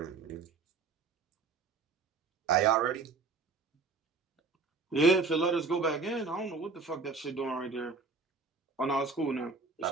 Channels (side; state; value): left; quieter; 4.3 dB